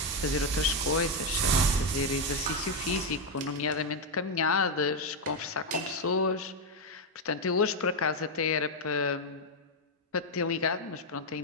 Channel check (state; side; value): normal; both; correlation 0.03